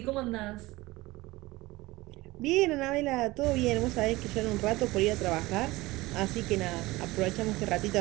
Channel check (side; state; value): left; quieter; 20.1 dB